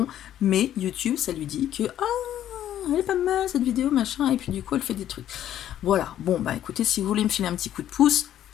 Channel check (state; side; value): quieter; right; 11.5 dB